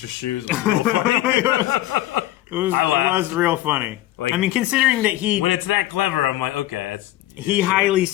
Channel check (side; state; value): right; quieter; 15.6 dB